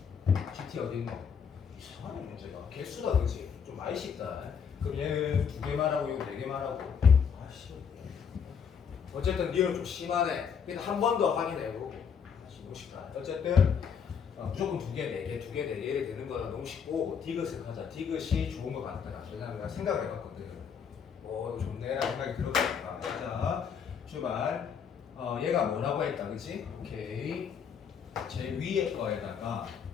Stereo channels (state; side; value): quieter; right; 6.9 dB